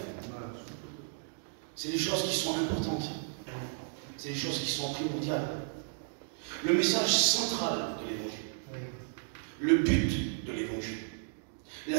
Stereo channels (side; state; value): left; silent; digital silence